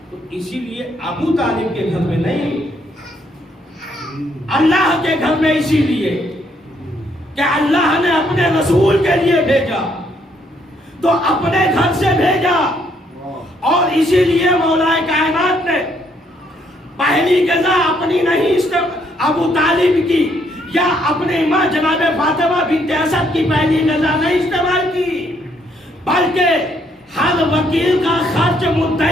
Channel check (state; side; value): normal; both; correlation 0.71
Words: तो इसीलिए अबू तालिब के घर में नहीं, अल्लाह के घर में, इसीलिए कि अल्लाह ने अपने रसूल के लिए भेजा तो अपने घर से भेजा। और इसीलिए मौलाए कायनात ने پہلی غذا اپنی نہیں ابو طالب کی یا اپنے ماں جناب فاطمہ بنت اسد کی پہلی غذا نہیں استعمال کی، بلکہ ہر وکیل کا خرچ